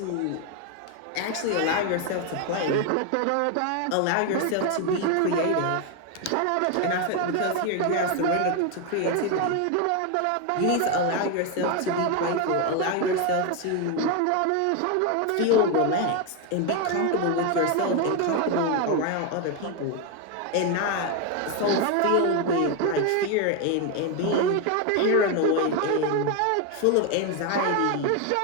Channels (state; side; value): different; both; correlation 0.01